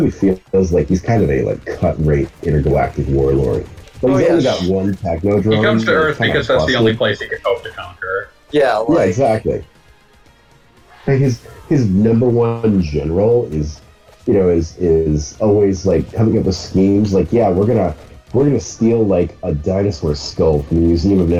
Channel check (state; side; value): identical; both; correlation 1.00